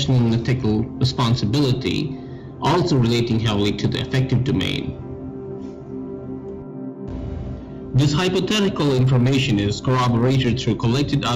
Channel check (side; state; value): both; identical; correlation 1.00